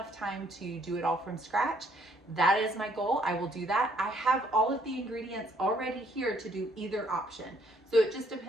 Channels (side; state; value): both; normal; correlation 0.66